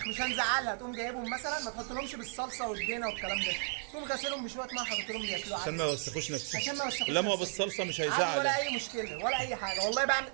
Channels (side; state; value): left; silent; 55 dB below the other